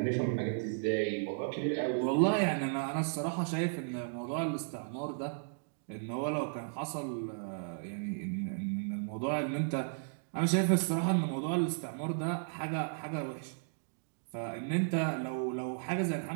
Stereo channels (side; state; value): left; silent; digital silence